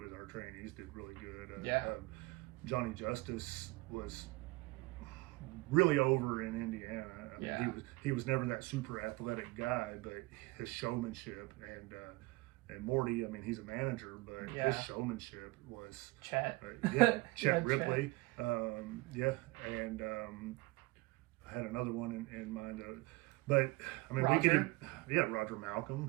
our trainees, did really good. Johnny Justice was really over in Indiana. I mean, he was never that super athletic guy, but his showmanship and Morty, I mean, he's a manager, but his showmanship was Chet. Chet Ripley. And I had another one in mind. But I mean, Roger? we could Roger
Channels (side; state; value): left; quieter; 22.8 dB